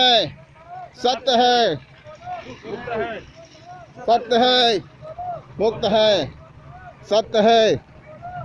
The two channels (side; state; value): both; identical; correlation 1.00